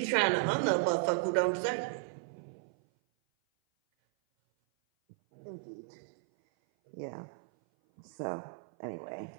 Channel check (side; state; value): left; silent; 55 dB below the other